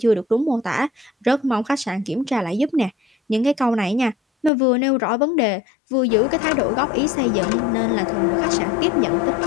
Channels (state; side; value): drops out; right; at 4.5 s